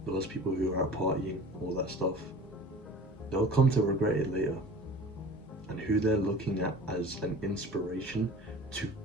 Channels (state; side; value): normal; both; correlation 0.41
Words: those people who are out partying, all that stuff, they'll come to regret it later. And who they're looking at as an inspiration to